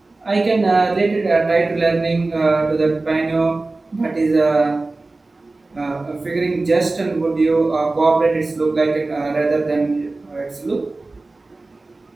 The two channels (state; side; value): quieter; left; 3.3 dB